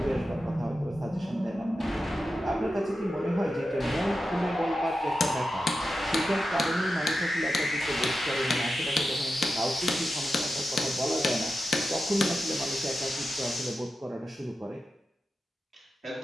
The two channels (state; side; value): normal; both; correlation 0.91